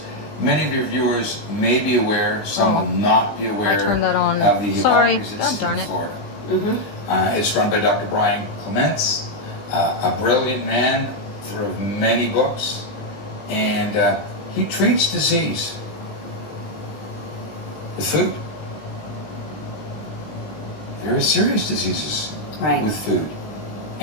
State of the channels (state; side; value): late; right; 19 ms